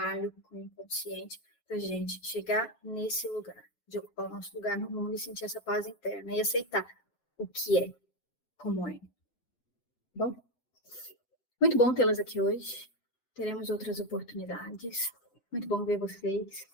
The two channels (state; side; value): late; right; 7.8 ms